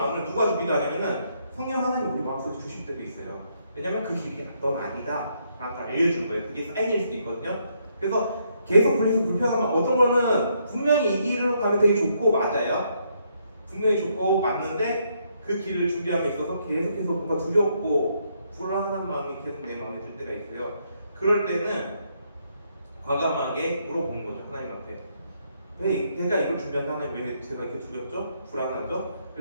누가 주기도 하냐면은 성령 하나님 우리 마음속에 주실 때도 있어요. 왜냐면 그 길이 넌 아니다 라고 알려준 거예요. 그게 사인일 수도 있거든요. 그래서 계속 불편하면 어떤 거는 분명히 이 길로 가면 되게 좋고 맞아요. 분명히 좋고 맞는데 그 길을 준비함에 있어서 계속해서 뭔가 두렵고 불안한 마음이 계속 내 마음에 들 때가 있어요. 그럴 때는 과감하게 물어보는 거죠. 하나님한테. 왜 내가 이걸 준비한 하나님 왜 제가 이렇게 두렵죠? 불안하죠?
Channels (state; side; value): inverted; both; correlation -0.74